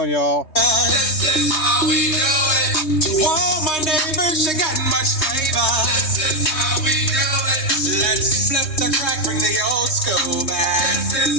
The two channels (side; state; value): right; late; 3.2 ms